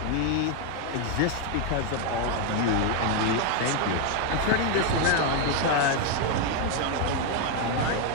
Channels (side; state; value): both; different; correlation 0.01